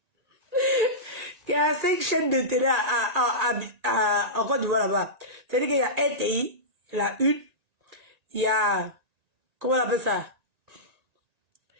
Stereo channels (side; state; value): left; late; 1.9 ms